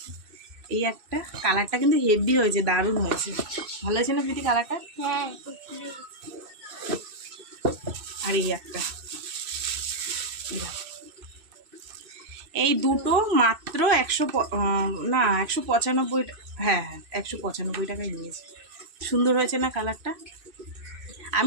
এই একটা কালারটা কিন্তু হেভি হয়েছে, দারুণ হয়েছে। ভালো হয়েছে না প্রীতি কালারটা? হ্যাঁ। আর এই একটা, এই দুটো মাত্র 195, হ্যাঁ হ্যাঁ 195 টাকায় নিয়েছে। সুন্দর হয়েছে না কালারটা?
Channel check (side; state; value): left; late; 2.6 ms